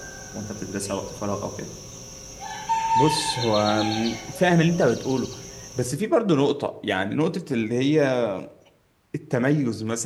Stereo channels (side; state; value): both; identical; correlation 1.00